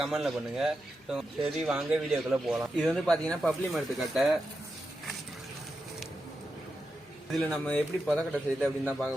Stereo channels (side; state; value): both; normal; correlation 0.88